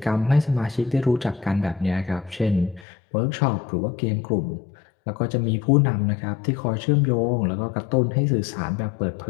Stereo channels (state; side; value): drops out; right; at 2.9 s